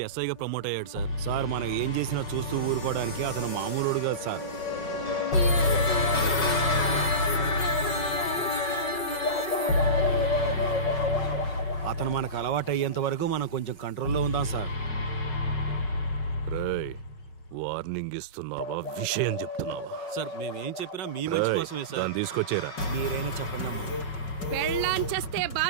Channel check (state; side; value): late; right; 5.4 ms